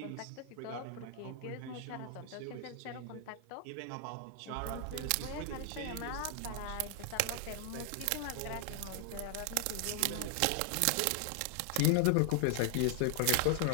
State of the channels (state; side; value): different; both; correlation 0.00